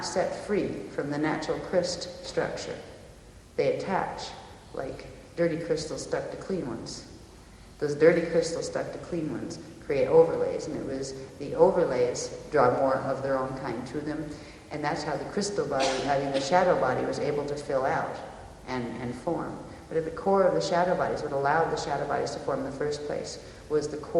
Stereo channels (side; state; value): both; identical; correlation 1.00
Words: set free from the natural crystal structure. They attach like dirty crystals stuck to clean ones. Those dirty crystals stuck to clean ones create overlays, and it was the overlays draw more of their own kind to them, and that's how the crystal body, the shadow body, was able to fill out and form. But at the core of the shadow bodies, what allowed the shadow bodies to form in the first place was the